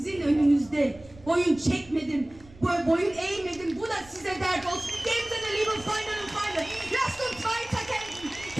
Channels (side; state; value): right; noise; rumble, 22 dB below the sound